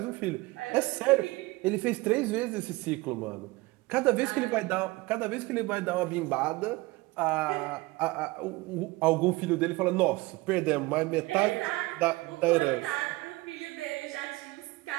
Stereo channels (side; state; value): left; quieter; 21.5 dB